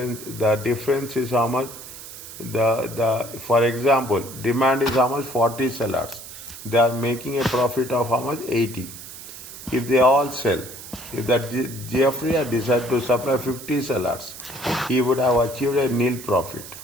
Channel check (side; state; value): right; noise; hiss, 14 dB below the sound